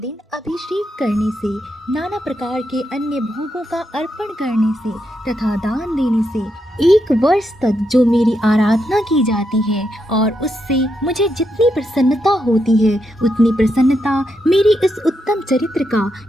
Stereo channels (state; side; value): normal; both; correlation 0.82